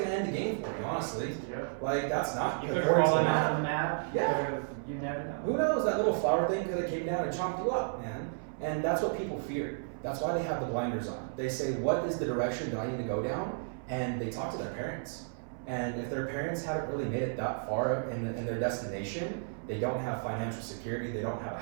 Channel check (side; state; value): left; silent; 56 dB below the other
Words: end the game for you, honestly. Yeah. Like that's not You could have according to the fallen off map. on the map. Yeah. You never know. Who knows? That little flower thing could have came down and chomped you up, man. And that's what people fear. That's why they have the blinders on. They say, what is the direction that I need to go down? And they talk to their parents. And if their parents haven't really made it that far in their destination, they don't have financial security, they don't have a